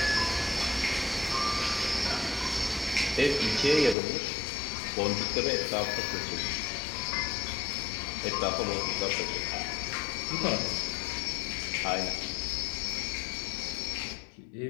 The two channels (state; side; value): drops out; right; at 4.0 s